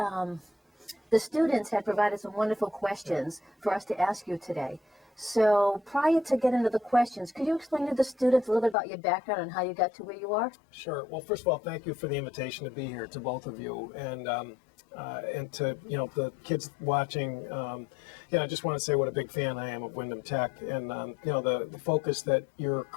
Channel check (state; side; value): drops out; right; at 8.8 s